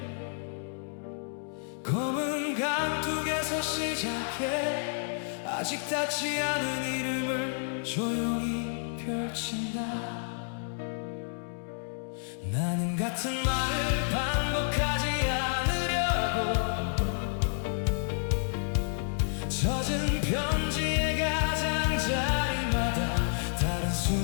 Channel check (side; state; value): right; silent; digital silence